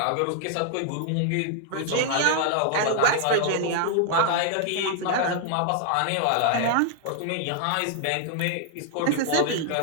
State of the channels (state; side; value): different; both; correlation -0.01